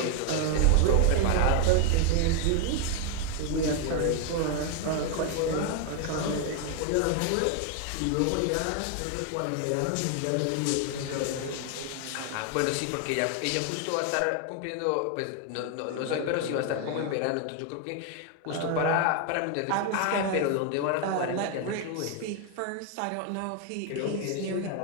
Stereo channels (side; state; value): both; different; correlation 0.01